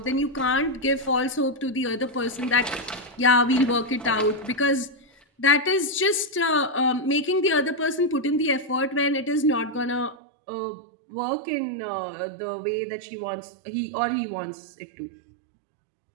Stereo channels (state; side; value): drops out; left; at 10.2 s